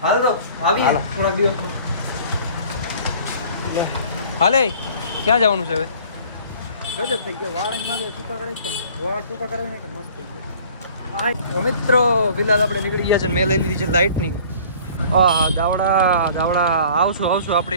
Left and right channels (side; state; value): both; inverted; correlation -0.50